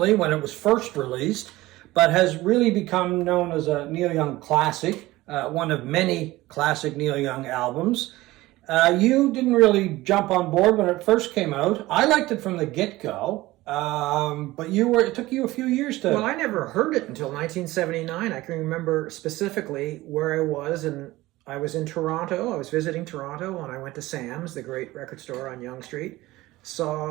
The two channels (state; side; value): quieter; left; 18.3 dB